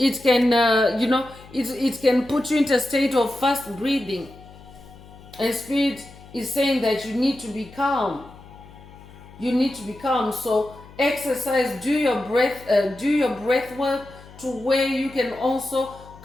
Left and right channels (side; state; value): left; noise; hum, 20 dB below the sound